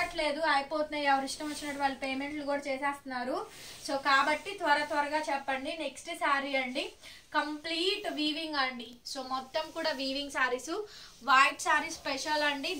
అయిపోతున్నాయి. ఎవరు ఇష్టం వచ్చినట్టు వాళ్ళు పేమెంట్లు కూడా చేసేస్తున్నారు. సో కాబట్టి త్వరగా చెప్పండి. నెక్స్ట్ శారీ అండి, కంప్లీట్ వీవింగ్ అండి. సో మొత్తం కూడా weaving saris, white sari special అండి.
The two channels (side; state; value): both; identical; correlation 1.00